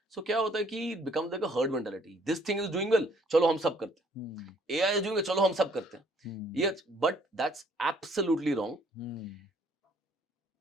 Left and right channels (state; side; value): normal; both; correlation 0.62